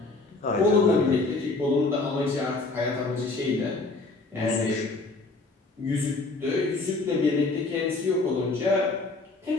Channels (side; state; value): right; quieter; 3.4 dB